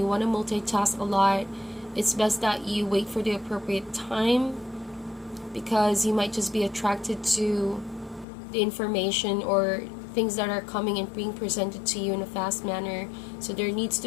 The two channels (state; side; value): drops out; right; at 8.2 s